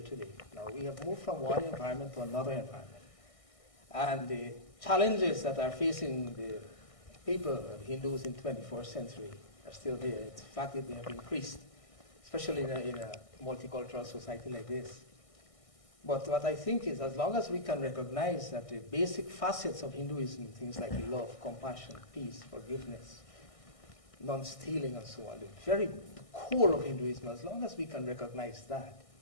today. Now, we have moved from one environment to another environment. And the challenges that are facing the people, Hindus in 21st century, are still there. In fact, they have increased, especially in a multicultural society like this. But what I think is, as long as we can recognize that the basic facets of Hinduism, things like love, compassion, peace, forgiveness, non-stealing, and so on, the very core of Hinduism, as long as we can recognize that,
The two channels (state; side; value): late; right; 1.6 ms